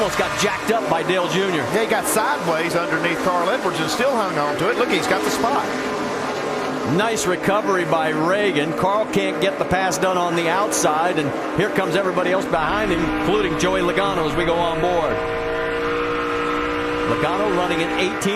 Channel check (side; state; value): both; identical; correlation 1.00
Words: got jacked up by Dale Jr. Yeah, he got sideways underneath Carl Edwards and still hung on to it. Look, he's got the spot. Nice recovery by Reagan. Carl can't get the pass done on the outside, and here comes everybody else behind him, including Joey Logano as we go on board. Logano running in